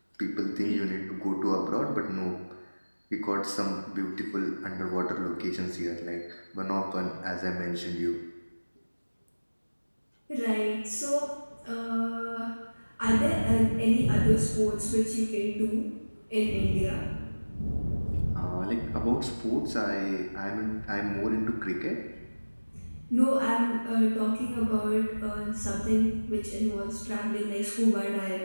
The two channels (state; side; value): inverted; both; correlation -1.00